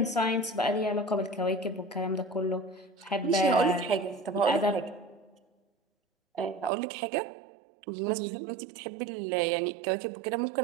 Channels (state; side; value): drops out; left; at 6.7 s